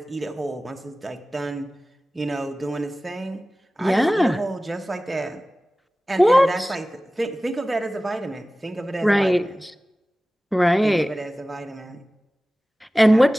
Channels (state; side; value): normal; both; correlation 0.97